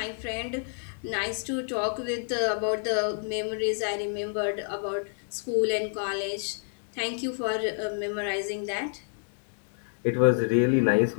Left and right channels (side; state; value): right; silent; digital silence